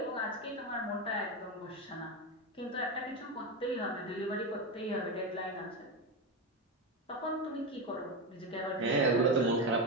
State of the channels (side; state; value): both; normal; correlation 0.14